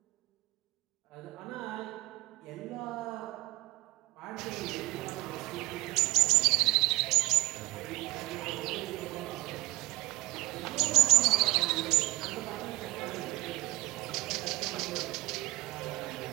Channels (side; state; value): left; quieter; 20.3 dB